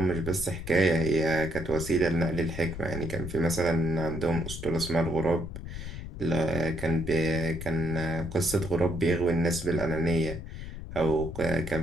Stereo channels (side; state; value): left; noise; rumble, 9 dB below the sound